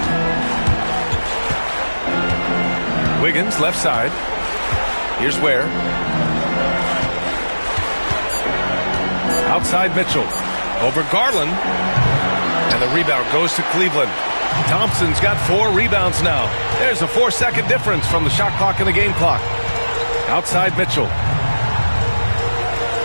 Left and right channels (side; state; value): both; inverted; correlation -1.00